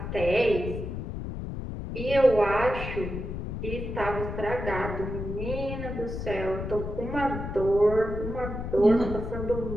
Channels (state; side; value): noise; left; rumble, 6 dB below the sound